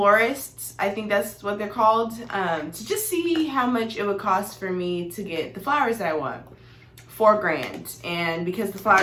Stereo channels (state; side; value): identical; both; correlation 1.00